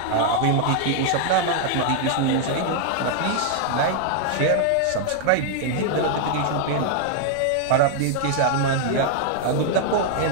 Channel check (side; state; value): both; different; correlation 0.00